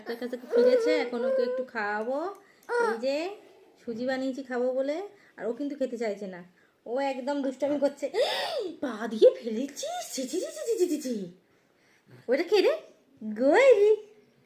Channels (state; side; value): identical; both; correlation 1.00